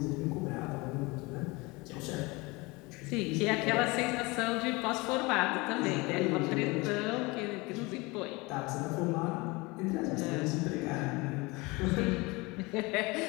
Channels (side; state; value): right; quieter; 24.7 dB